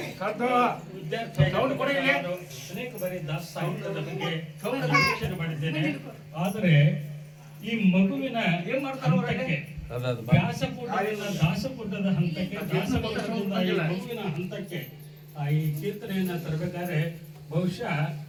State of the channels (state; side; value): identical; both; correlation 1.00